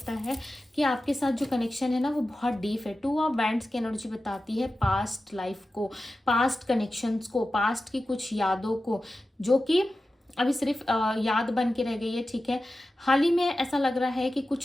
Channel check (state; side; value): normal; both; correlation 0.93